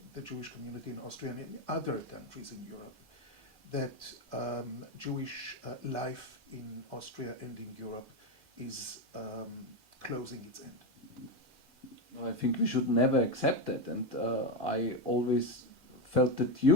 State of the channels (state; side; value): normal; both; correlation 0.11